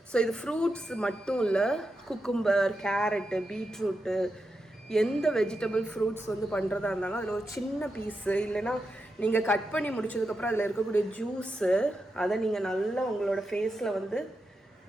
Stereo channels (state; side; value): normal; both; correlation 0.87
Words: ஸோ இது ஃப்ரூட்ஸ் மட்டும் இல்லை, குக்கும்பர், கேரட்டு, பீட்ரூட்டு, எந்த வெஜிடபிள் ஃப்ரூட்ஸ் வந்து பண்ணுறதா இருந்தாலும் அதில் ஒரு சின்ன பீஸு, இல்லைன்னா நீங்கள் கட் பண்ணி முடிச்சதுக்கப்புறம் அதில் இருக்கக்கூடிய ஜூஸு, அதை நீங்கள் நல்லா உங்களோட ஃபேஸில் வந்து